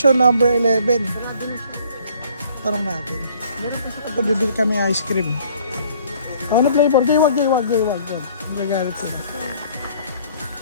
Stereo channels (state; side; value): inverted; both; correlation -0.58